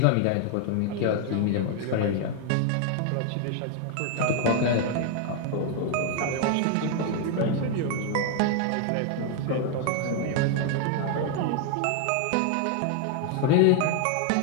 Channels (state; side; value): different; both; correlation 0.00